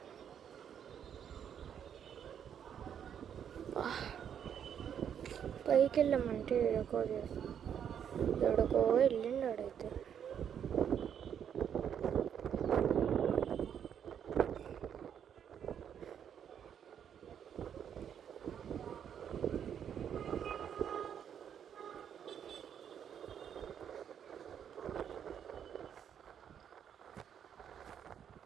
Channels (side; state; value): left; quieter; 8.6 dB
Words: పైకి వెళ్ళామంటే ఎడకో వెళ్ళిండు ఆడైతే.